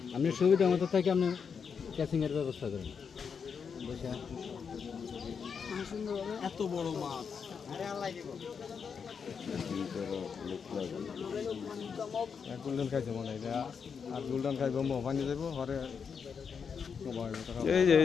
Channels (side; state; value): right; quieter; 6.3 dB